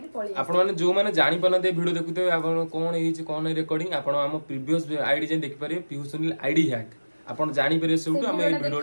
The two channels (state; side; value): inverted; both; correlation -1.00